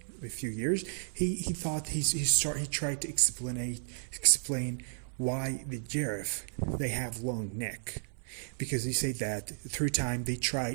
a few years, he tried to explain why the giraffe they have long neck, because he said that through time they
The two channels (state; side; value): silent; left; 56 dB below the other